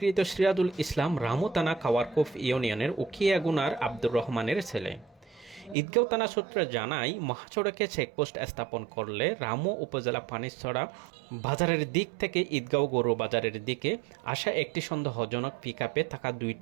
সিরাজুল ইসলাম রামু থানা কাওয়ারকোফ ইউনিয়নের উখিয়াগুনার আব্দুর রহমানের ছেলে। ঈদগাঁও থানা সূত্রে জানায়, মহাসড়কে চেকপোস্ট স্থাপন করলে রামু উপজেলা পানিছড়া বাজারের দিক থেকে ঈদগাঁও গরু বাজারের দিকে আসা একটি সন্দেহজনক পিকআপে থাকা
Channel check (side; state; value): left; drops out; at 5.8 s